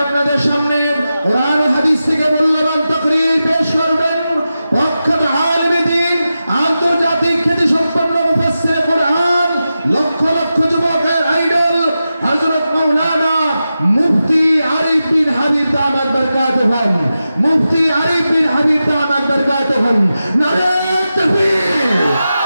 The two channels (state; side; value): inverted; both; correlation -0.91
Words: আপনাদের সামনে কোরআন ও হাদিস থেকে মূল্যবান তাকরীর পেশ করবেন প্রখ্যাত আলেমে দ্বীন, আন্তর্জাতিক খ্যাতি সম্পন্ন মুফাসসির কোরআন, লক্ষ লক্ষ যুবকের আইডল হযরত মাওলানা মুফতি আরিফ বিন হাবিব দামাত বারকাতুহু। মুফতি আরিফ বিন হাবিব দামাত বারকাতুহু। নারে তাকবীর,